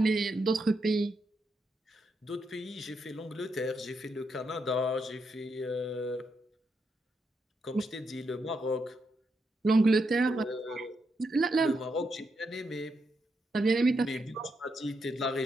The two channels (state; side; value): normal; both; correlation 0.82